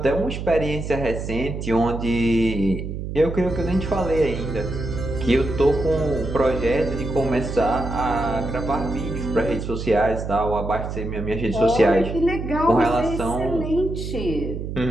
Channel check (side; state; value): right; noise; hum, 6 dB below the sound